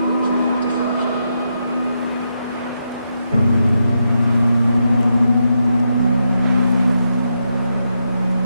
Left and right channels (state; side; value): inverted; both; correlation -0.83